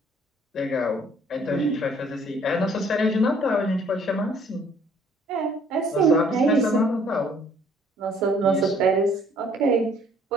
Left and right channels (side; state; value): both; normal; correlation 0.59